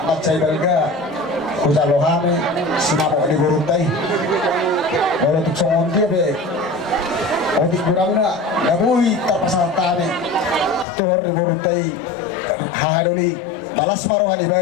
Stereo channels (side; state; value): right; drops out; at 10.9 s